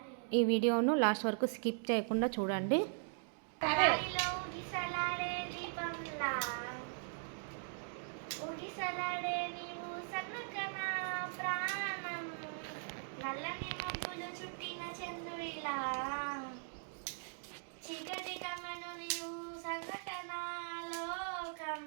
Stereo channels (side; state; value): left; silent; digital silence